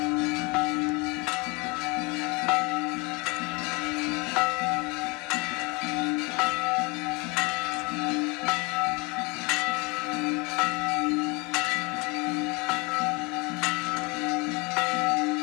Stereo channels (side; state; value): right; quieter; 28.2 dB